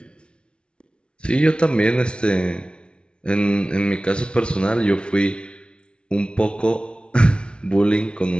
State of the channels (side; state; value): right; late; 0.057 ms